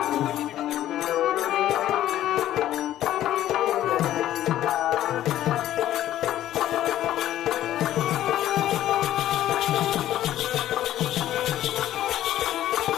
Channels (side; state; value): right; quieter; 12.9 dB